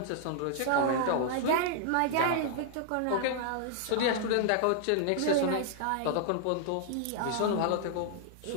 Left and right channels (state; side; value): different; both; correlation -0.01